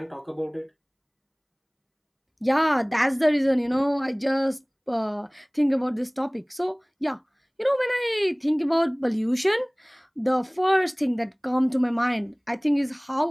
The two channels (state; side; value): identical; both; correlation 1.00